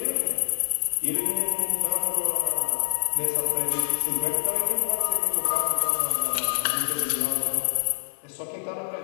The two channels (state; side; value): silent; right; 61 dB below the other